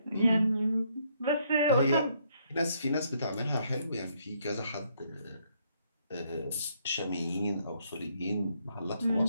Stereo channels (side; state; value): both; inverted; correlation -0.71